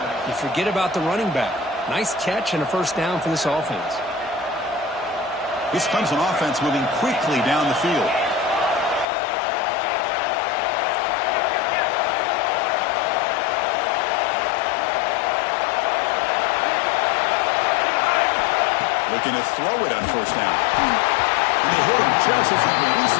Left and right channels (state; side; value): drops out; right; at 9.1 s